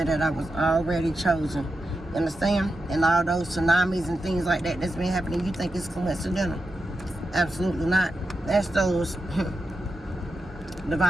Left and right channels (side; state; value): both; normal; correlation 0.89